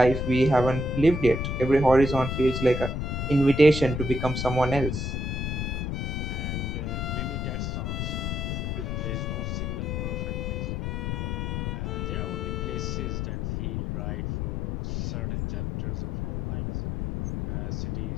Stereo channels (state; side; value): noise; left; rumble, 2 dB below the sound